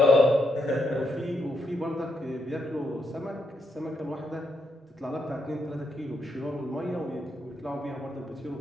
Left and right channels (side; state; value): both; normal; correlation 0.80